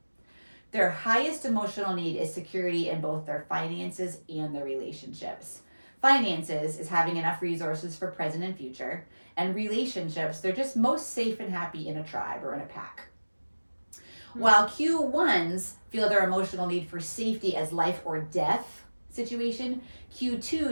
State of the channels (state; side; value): inverted; both; correlation -1.00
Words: Their highest emotional need is security in both their finances and their relationships. Finances is having enough resources for present and future. And relationships, they're just most safe and happy in a tribe or in a pack. While Q1s feel their emotional need for safety as life or death situation,